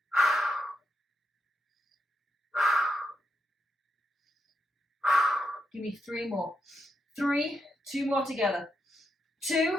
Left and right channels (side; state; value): both; normal; correlation 0.82